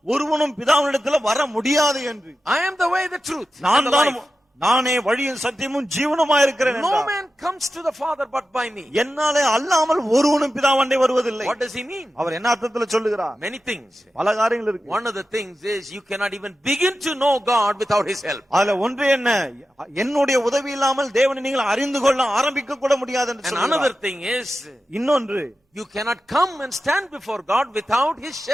ஒருவனும் பிதாவினிடத்தில் வர முடியாது என்று. I am the way, the truth, and நான் the தான் life. நானே வழியும் சத்தியமும் ஜீவனுமாய் இருக்கிறேன் No என்றார். man comes to the Father but by me. என்னாலே அல்லாமல் ஒருவனும் பிதாவண்டை வருவதில்லை. What does He mean? அவர் என்ன அர்த்தத்துல சொல்லுகிறார்? Many things. பல காரியங்கள் இருக்கு. One of the things is you cannot even begin to know God without His help. அதுல ஒன்று என்ன, என்னுடைய உதவி இல்லாமல் தேவனை நீங்கள் அறிந்து கொள்ள ஆரம்பிக்க கூட முடியாது என்று And சொல்லுகிறார். another thing is இன்னொன்று, you cannot come and stand before God without His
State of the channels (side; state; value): both; normal; correlation 0.92